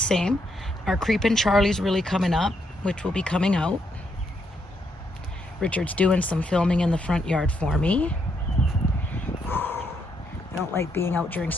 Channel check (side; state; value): both; normal; correlation 0.77